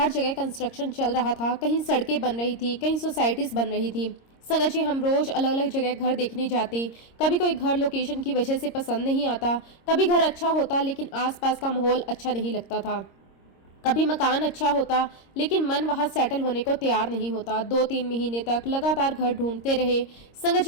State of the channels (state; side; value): late; right; 26 ms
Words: जगह कंस्ट्रक्शन चल रहा था, कहीं सड़कें बन रही थी, कहीं सोसाइटीज बन रही थी। संगत जी, हम रोज अलग अलग जगह घर देखने जाते। कभी कोई घर लोकेशन की वजह से पसंद नहीं आता, कभी घर अच्छा होता लेकिन आसपास का माहौल अच्छा नहीं लगता था। कभी मकान अच्छा होता लेकिन मन वहां सेटल होने को तैयार नहीं होता। 2-3 महीने तक लगातार घर ढूंढते रहे। संगत